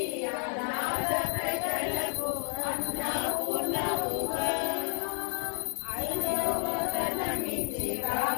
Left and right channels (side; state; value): right; silent; digital silence